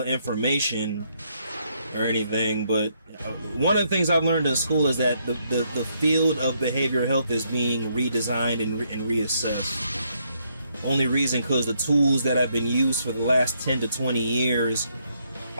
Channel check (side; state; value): both; inverted; correlation -0.74